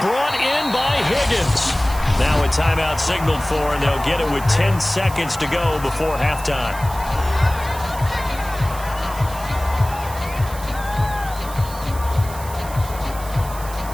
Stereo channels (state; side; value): noise; right; hiss, 15 dB below the sound